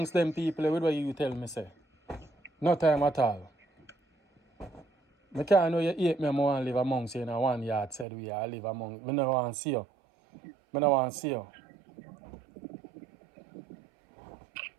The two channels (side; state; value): left; drops out; at 8.1 s